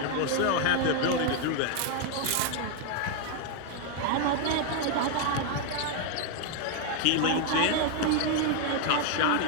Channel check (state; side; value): different; both; correlation 0.00